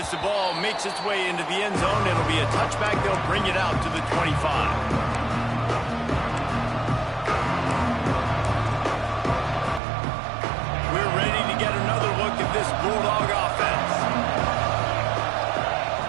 the ball makes its way into the end zone, it'll be a touchback. They'll bring it out to the 25. We're ready to get another look at this Bulldog offense.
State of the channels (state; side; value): drops out; left; at 9.8 s